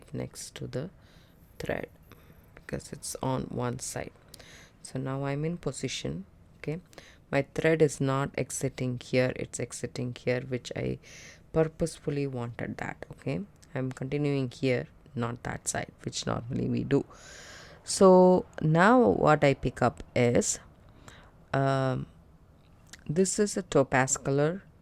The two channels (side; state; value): both; identical; correlation 1.00